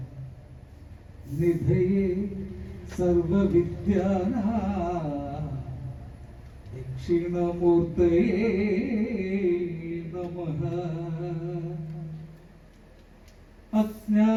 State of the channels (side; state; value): both; identical; correlation 1.00